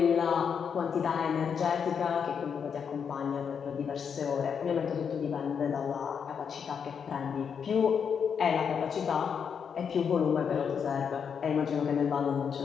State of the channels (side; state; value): right; quieter; 6.9 dB